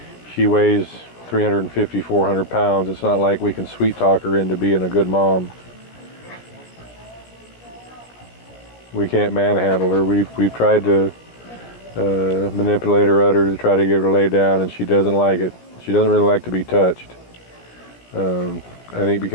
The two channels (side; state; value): right; late; 17 ms